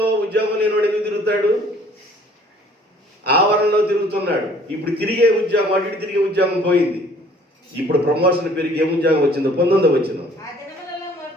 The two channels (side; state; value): both; normal; correlation 0.56